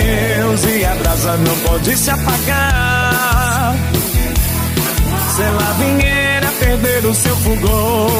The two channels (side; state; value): both; identical; correlation 1.00